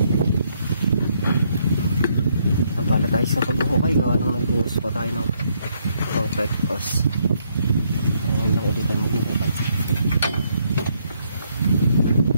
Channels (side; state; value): both; inverted; correlation -0.72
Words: Nampala tayo sa pagbukay. Gawa nang nagbuhos pa tayo ng concrete pass. Ayun lang ulitan magbukay.